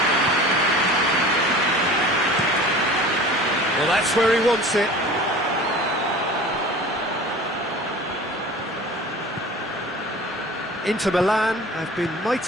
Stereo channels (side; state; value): both; normal; correlation 0.40